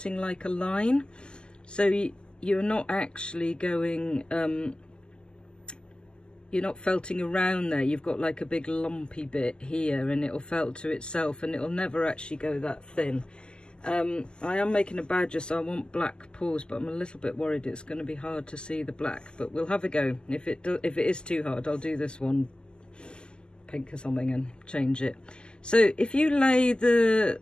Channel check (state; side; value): late; right; 0.048 ms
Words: like a line. So you're not actually going, you're not felting around there. You've got like a big lumpy bit here, and it'll felt to itself, and it'll never actually go that thin. I am making a badger, so I want black paws, but I'm a little bit worried it's going to be hard to see the black, but we'll have a go. If it is too hard, I'll do this one pink or something and change it. So if you lay the